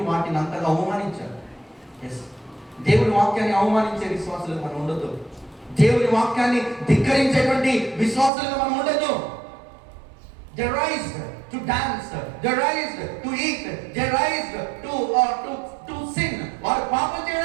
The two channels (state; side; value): drops out; left; at 8.3 s